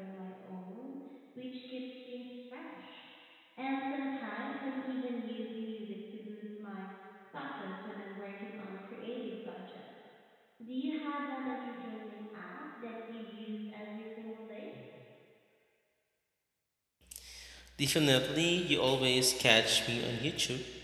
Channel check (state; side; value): identical; both; correlation 1.00